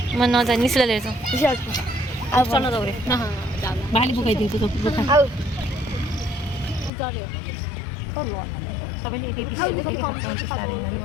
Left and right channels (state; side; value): drops out; right; at 6.9 s